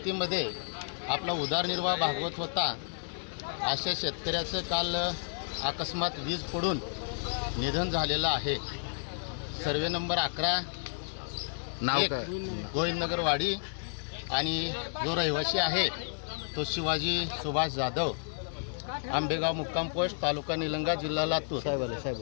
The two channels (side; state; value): right; silent; 57 dB below the other